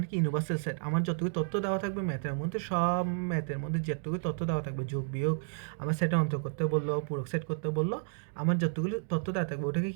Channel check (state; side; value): silent; left; digital silence